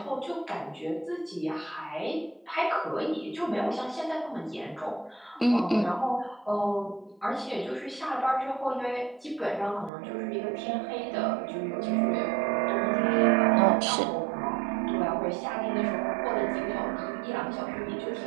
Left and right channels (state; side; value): drops out; left; at 9.9 s